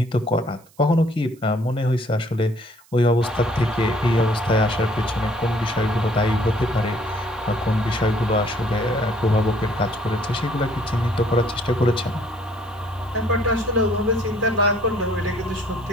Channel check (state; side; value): noise; right; hiss, 29 dB below the sound